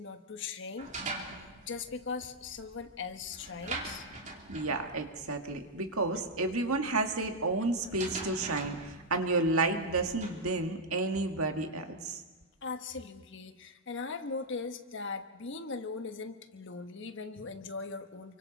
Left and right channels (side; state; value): both; normal; correlation -0.03